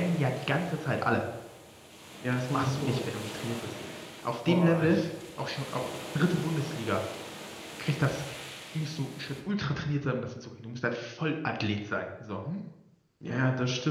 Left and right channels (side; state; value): both; identical; correlation 1.00